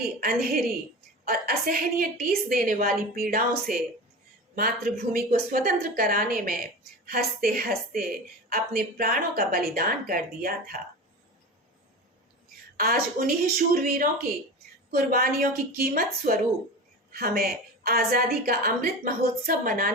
अंधेरी और असहनीय टीस देने वाली पीड़ाओं से मातृभूमि को स्वतंत्र कराने में हंसते हंसते अपने प्राणों का बलिदान कर दिया था। आज उन्हीं शूरवीरों की कुर्बानियों की कीमत स्वरूप हमें आजादी का अमृत महोत्सव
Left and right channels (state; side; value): normal; both; correlation 0.30